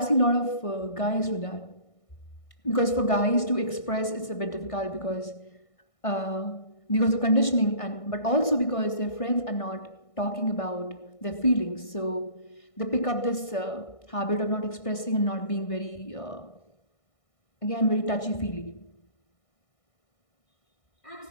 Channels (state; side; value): late; right; 1.6 ms